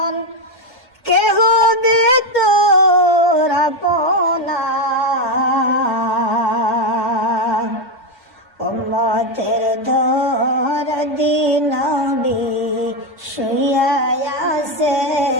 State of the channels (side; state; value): both; normal; correlation 0.09